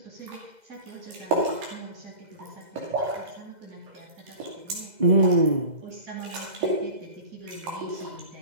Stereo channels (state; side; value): late; left; 2.0 ms